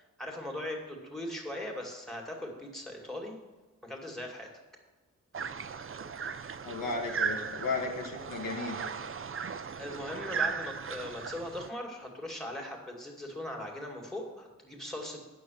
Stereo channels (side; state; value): both; normal; correlation 0.33